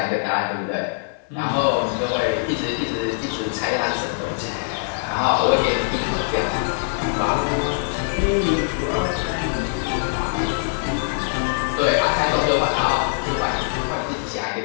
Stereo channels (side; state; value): right; silent; 55 dB below the other